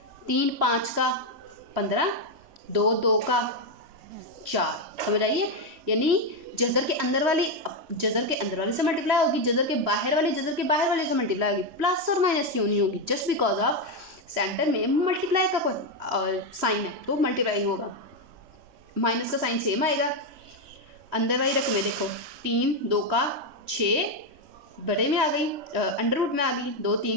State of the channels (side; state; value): left; late; 3.1 ms